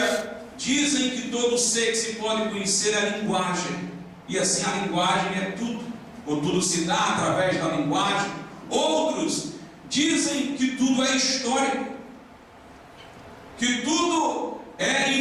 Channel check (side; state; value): both; identical; correlation 1.00